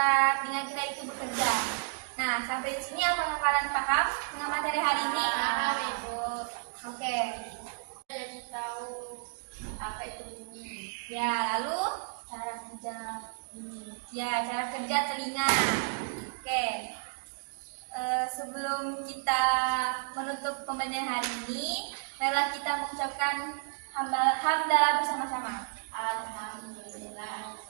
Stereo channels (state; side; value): silent; left; digital silence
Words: telinga kita itu bekerja. Nah, sampai di sini apakah kalian paham dengan materi hari ini? Paham, Ibu. Oke. Jadi tahu apa itu bunyi. Ya, lalu cara kerja ya, cara kerja telinga. Oke. Sebelum kita menutup pembelajaran hari ini, marilah kita mengucapkan hamdalah bersama-sama. Alhamdulillah.